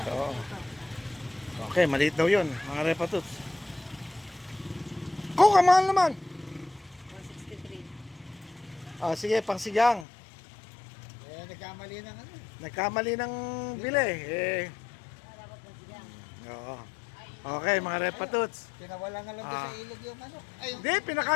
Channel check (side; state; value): right; drops out; at 10.1 s